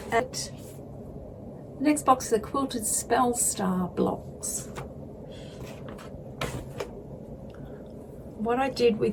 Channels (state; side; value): identical; both; correlation 1.00